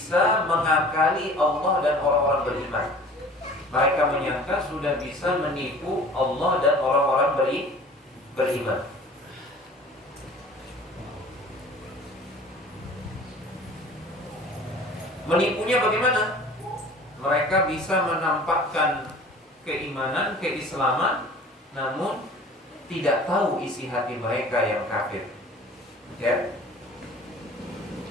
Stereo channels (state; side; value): normal; both; correlation 0.45